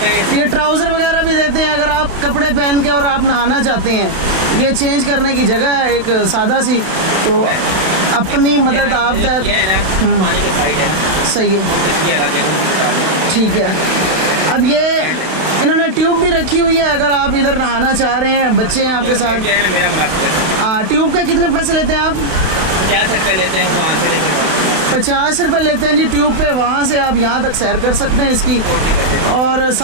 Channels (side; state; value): left; late; 31 ms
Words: ये ट्राउज़र वगैरह भी देते हैं अगर आप कपड़े पहन के और आप नहाना चाहते हैं। ये चेंज करने की जगह है एक सादा सी, तो अपनी मदद आप तक पानी के साइड है ना, सही है, ठीक है। अब ये इन्होंने ट्यूब भी रखी हुई है, अगर आप इधर नहाना चाह रहे हैं, बच्चे हैं आपके साथ। मेरा मुनाफा ट्यूब के कितने पैसे लेते हैं आप? 50 रुपये लेते हैं वहाँ से लेकर 50 रुपये लेते हैं जी ट्यूब पे। वहाँ से आप यहाँ तक सैर कर सकते हैं इसकी, और